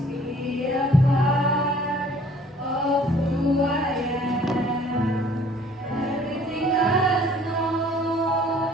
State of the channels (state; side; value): normal; both; correlation 0.55